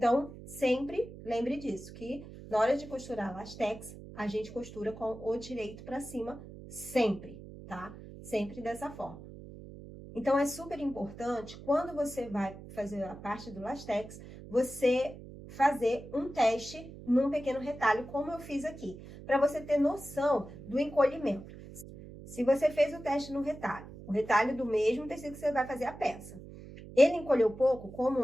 sempre lembre disso, que na hora de costurar lastex, a gente costura com o direito para cima, sempre, tá? Sempre dessa forma. Então, é super importante, quando você vai fazer a parte do lastex, você fazer um teste num pequeno retalho, como eu fiz aqui, para você ter noção do encolhimento. Se você fez o teste no retalho, o retalho do mesmo tecido que você vai fazer a peça, ele encolheu pouco,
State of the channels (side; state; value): right; noise; hum, 15 dB below the sound